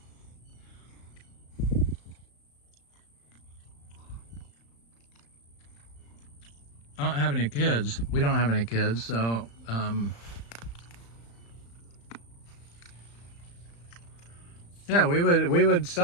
I don't have any kids. We don't have any kids, so yeah, we would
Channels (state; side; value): late; right; 35 ms